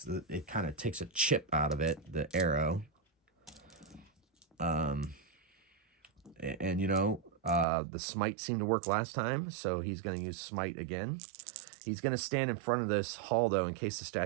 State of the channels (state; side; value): drops out; left; at 7.7 s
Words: kind of takes a chip out of it, the arrow. And you know, the smite seemed to work last time, so he's going to use smite again. He's going to stand in front of this hall, though, in case the